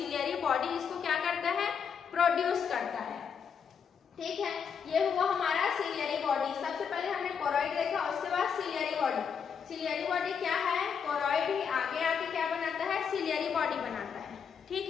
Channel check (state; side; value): quieter; right; 6.8 dB